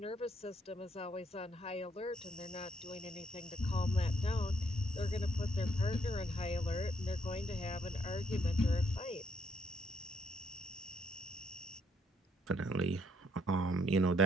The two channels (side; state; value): both; normal; correlation 0.71